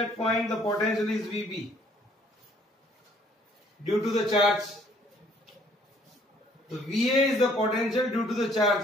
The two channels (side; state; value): both; normal; correlation 0.61